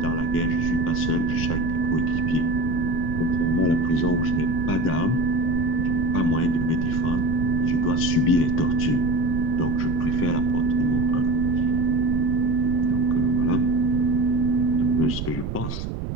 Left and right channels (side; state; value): right; noise; rumble, 5 dB below the sound